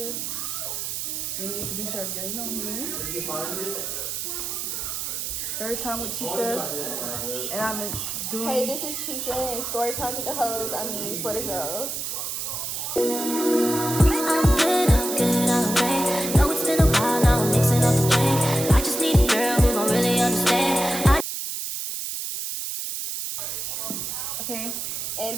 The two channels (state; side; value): noise; right; hiss, 4 dB below the sound